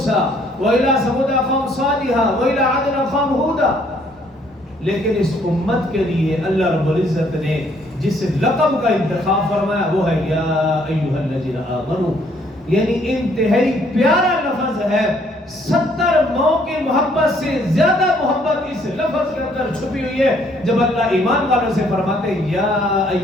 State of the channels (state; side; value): normal; both; correlation 0.65